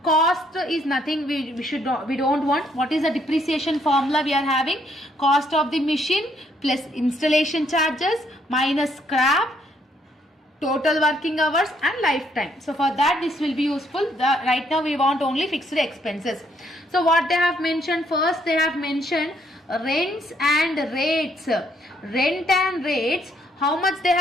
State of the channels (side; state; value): both; normal; correlation 0.70